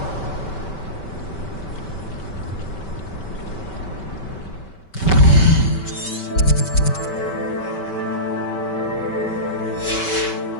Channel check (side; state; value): right; late; 5.2 ms